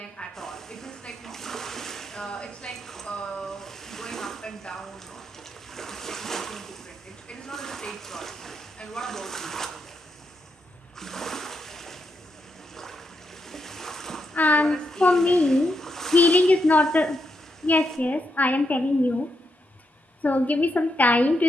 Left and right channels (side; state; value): both; normal; correlation 0.82